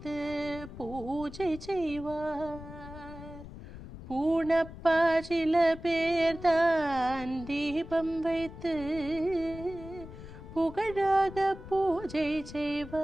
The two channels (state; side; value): noise; left; rumble, 14 dB below the sound